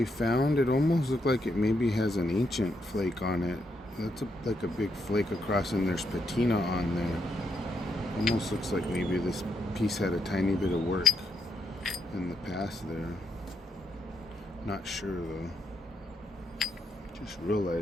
found, it almost looked like it maybe has an ancient flake on it. That's like a big flake across, and there's patina on there. Almost looks like maybe this piece had a tiny bit of work in the past there. Not sure though. Just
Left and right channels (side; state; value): both; normal; correlation 0.79